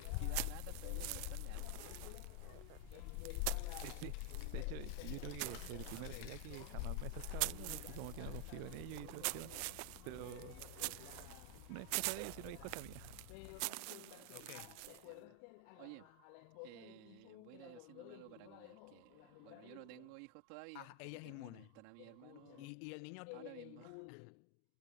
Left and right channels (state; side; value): different; both; correlation 0.00